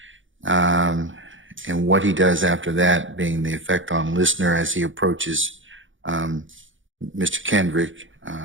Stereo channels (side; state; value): left; late; 0.56 ms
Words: and what he does after that, being the effect on listener as he approaches Mr. Kendrick